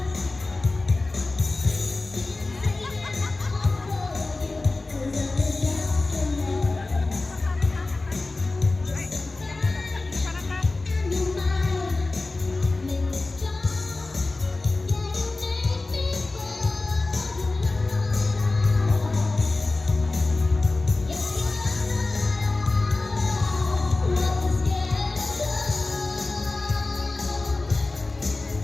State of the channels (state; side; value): quieter; right; 3.3 dB